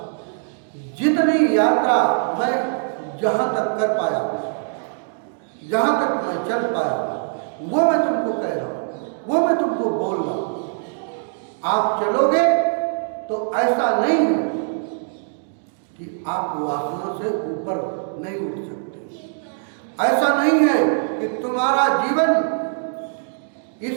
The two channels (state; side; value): silent; left; digital silence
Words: जितनी यात्रा मैं जहां तक कर पाया, जहां तक मैं चल पाया, वो मैं तुमको कह रहा हूं, वो मैं तुमको बोल रहा हूं। आप चलोगे तो ऐसा नहीं है कि आप वासना से ऊपर नहीं उठ सकते। ऐसा नहीं है कि तुम्हारा जीवन